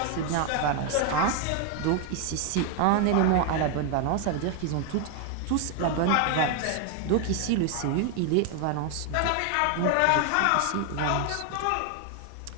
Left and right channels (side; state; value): both; different; correlation 0.01